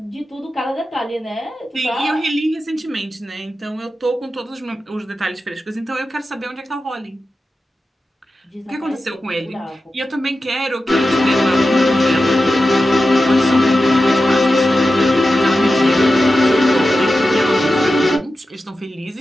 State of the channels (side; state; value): both; normal; correlation 0.92